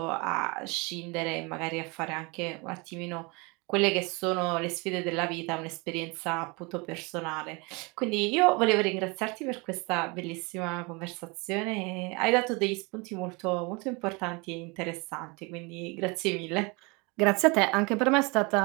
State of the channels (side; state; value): left; quieter; 28.3 dB